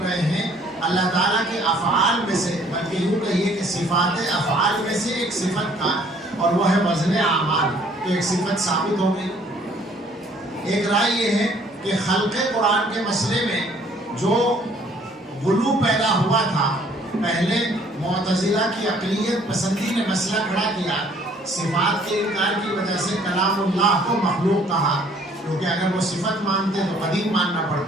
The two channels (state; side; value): normal; both; correlation 0.59